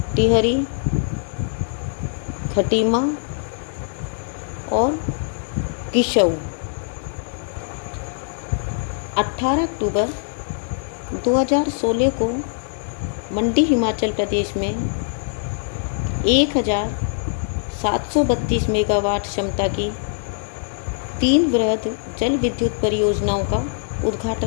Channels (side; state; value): right; silent; 64 dB below the other